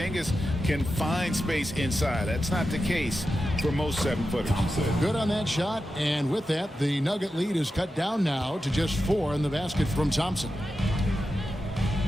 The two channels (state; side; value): normal; both; correlation 0.91